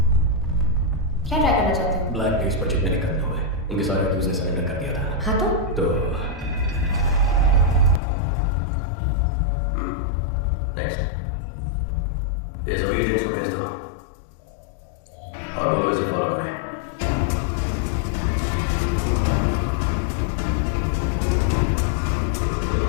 क्या ट्राई करना चाहते हो? ब्लैक डेज पर जितने निकलने हुए उनके सारे अक्यूज ने सरेंडर कर दिया था। हाँ तो नेक्स्ट। ये सभी एजेंट्स को भेज दो और दोनों इसे फॉलो करें।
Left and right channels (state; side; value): drops out; right; at 8.0 s